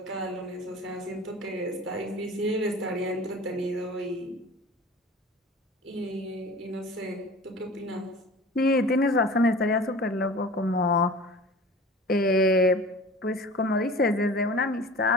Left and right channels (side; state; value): both; normal; correlation 0.40